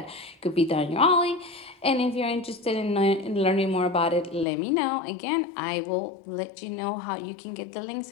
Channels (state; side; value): drops out; right; at 4.5 s